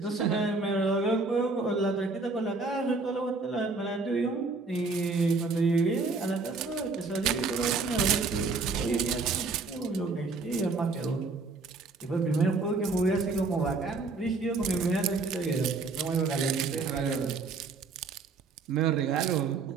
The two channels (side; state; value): left; quieter; 4.0 dB